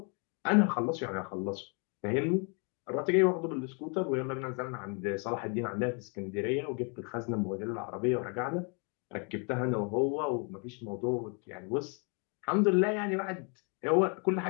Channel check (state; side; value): quieter; right; 36.6 dB